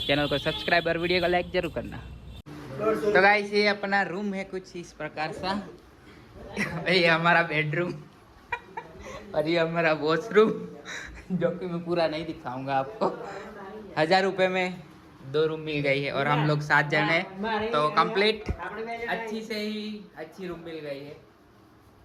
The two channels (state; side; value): identical; both; correlation 1.00